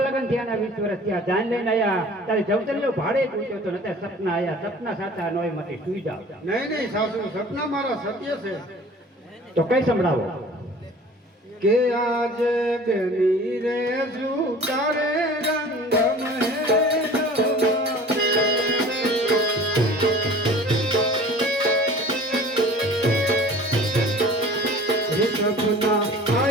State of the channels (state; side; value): normal; both; correlation 0.45